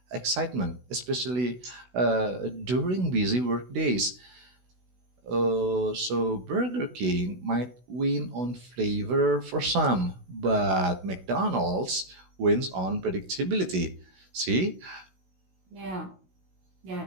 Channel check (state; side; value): late; left; 16 ms